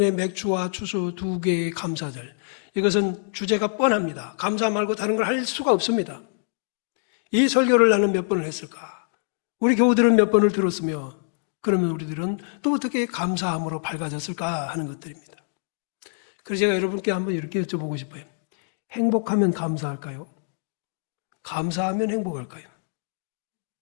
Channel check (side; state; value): right; silent; digital silence